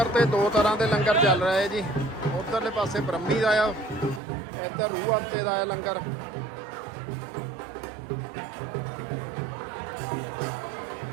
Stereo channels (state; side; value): drops out; left; at 4.2 s